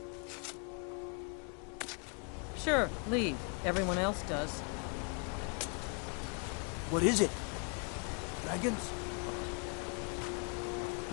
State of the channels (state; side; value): quieter; right; 37.8 dB